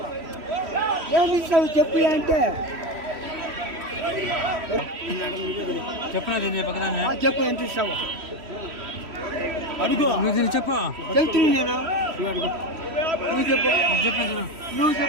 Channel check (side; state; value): left; late; 3.1 ms